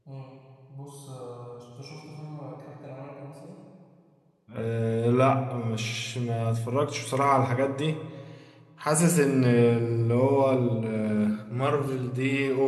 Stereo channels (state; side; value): identical; both; correlation 1.00